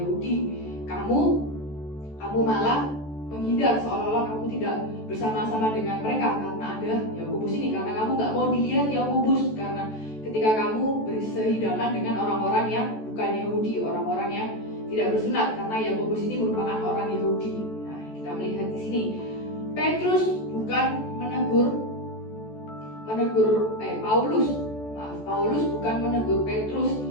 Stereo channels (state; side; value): late; right; 14 ms